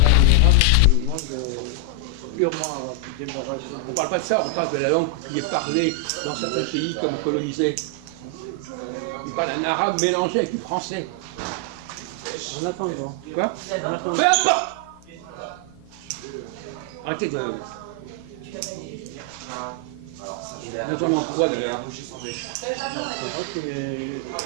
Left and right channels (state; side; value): different; both; correlation 0.00